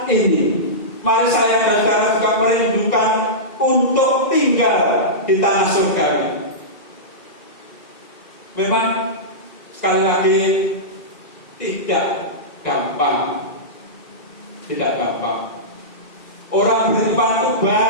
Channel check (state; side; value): late; right; 2.3 ms